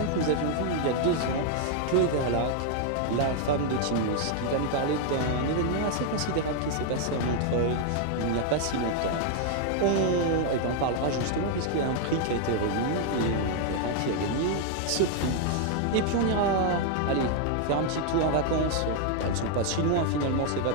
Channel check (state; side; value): different; both; correlation 0.00